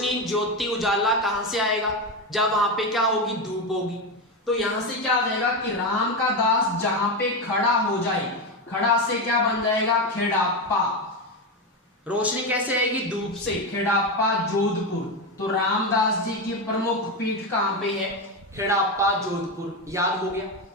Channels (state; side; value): normal; both; correlation 0.14